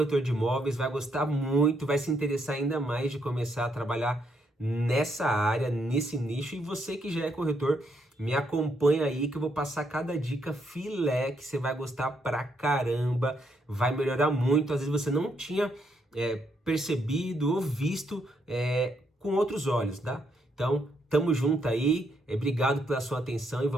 de imóveis, vai gostar muito, vai se interessar ainda mais de começar a trabalhar nessa área, nesse nicho. E você que já é corretor, me acompanha aí que eu vou passar cada dica filé que você vai gostar pra caramba, vai melhorar muito. Às vezes você não tinha percebido ou visto com outros olhos, tá? Então, tamo junto aí, obrigado pela sua atenção e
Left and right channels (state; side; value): normal; both; correlation 0.75